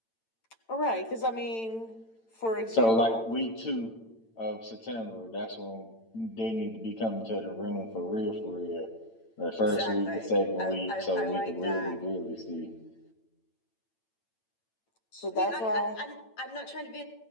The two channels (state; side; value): late; right; 8.9 ms